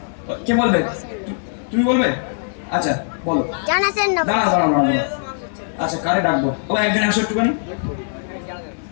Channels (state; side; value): silent; right; digital silence